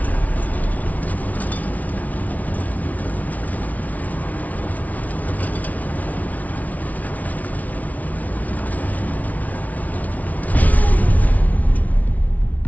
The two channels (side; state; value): right; late; 0.072 ms